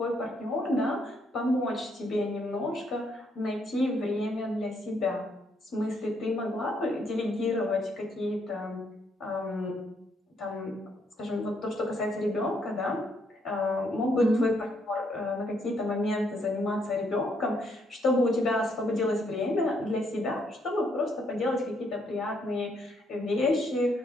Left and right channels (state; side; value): normal; both; correlation 0.73